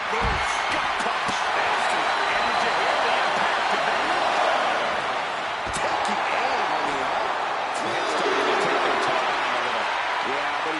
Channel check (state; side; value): identical; both; correlation 1.00